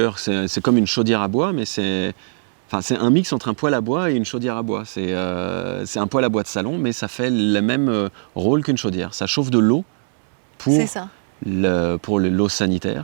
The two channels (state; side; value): silent; left; 65 dB below the other